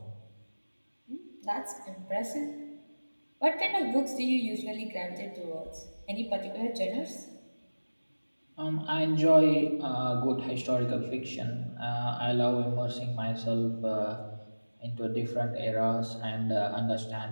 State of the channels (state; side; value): inverted; both; correlation -1.00